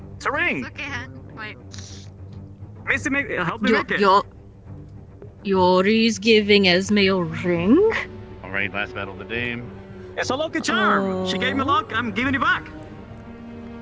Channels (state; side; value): identical; both; correlation 1.00